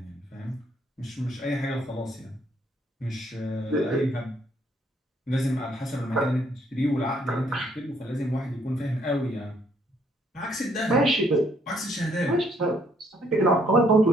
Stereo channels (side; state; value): both; normal; correlation 0.68